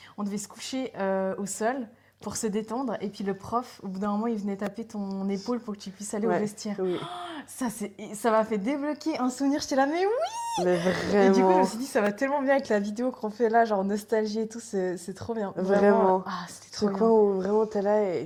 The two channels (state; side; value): identical; both; correlation 1.00